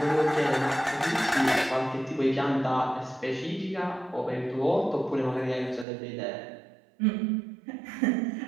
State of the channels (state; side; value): drops out; left; at 5.9 s